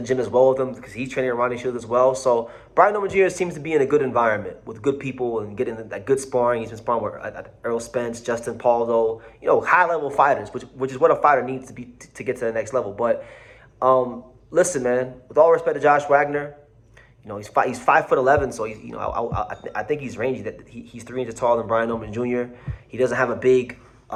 as well with him because he's training at Ronnie Shields as well. So Brian Norman Jr. seems to be in a good environment with good people and getting that good sparring. He's been sparring with Earl Spence, Justin Paldo, high-level fighters, which is what a fighter needs to be to get to the next level. But listen, man, with all respect to Josh Wagner, he's 5'11", so he's I think he's rangy. That he's 3 inches taller than Brian Norman Jr. He doesn't have a big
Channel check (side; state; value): both; identical; correlation 1.00